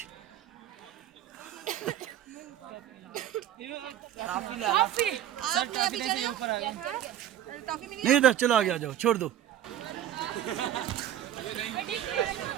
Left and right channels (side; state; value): left; quieter; 11.2 dB